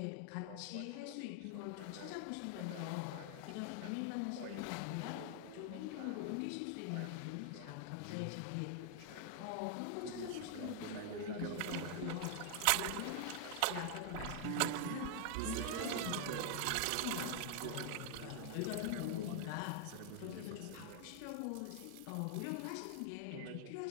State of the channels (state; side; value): different; both; correlation 0.00